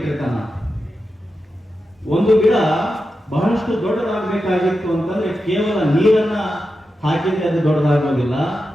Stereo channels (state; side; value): normal; both; correlation 0.90